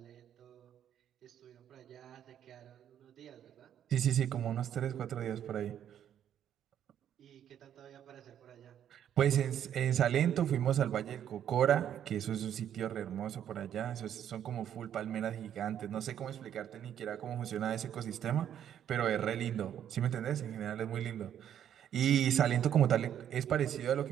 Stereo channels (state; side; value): quieter; left; 9.9 dB